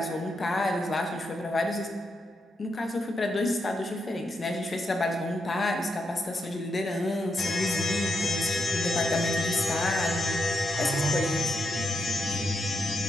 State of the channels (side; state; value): both; normal; correlation 0.83